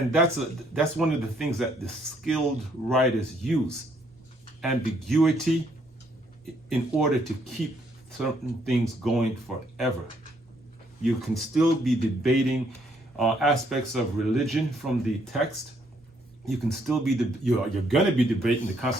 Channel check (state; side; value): normal; both; correlation 0.69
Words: that's one of the things that the skilled writers use, ambiguity, in order to keep certain things going forever. You can still be debating aspects of religion from the text. You can still be, you're going to be debating the